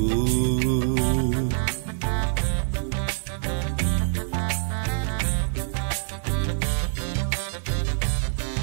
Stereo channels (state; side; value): silent; left; digital silence